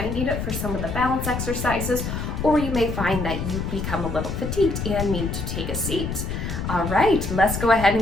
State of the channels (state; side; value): noise; left; rumble, 4 dB below the sound